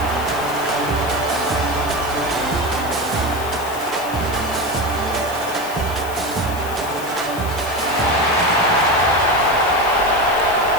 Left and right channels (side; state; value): left; noise; hiss, 14 dB below the sound